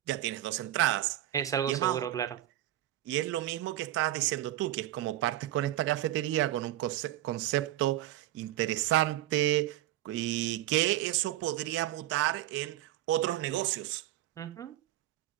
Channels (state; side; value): quieter; left; 14.1 dB